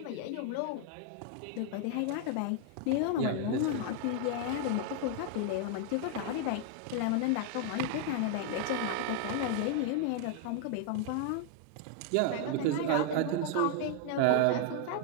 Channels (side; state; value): both; different; correlation 0.00